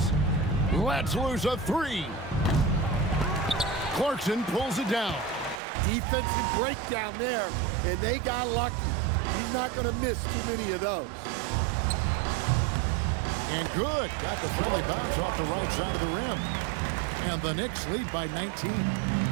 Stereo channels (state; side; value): drops out; left; at 5.6 s